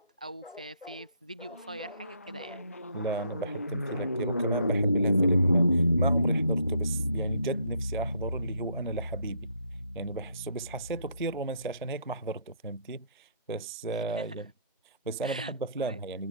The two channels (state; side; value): inverted; both; correlation -0.68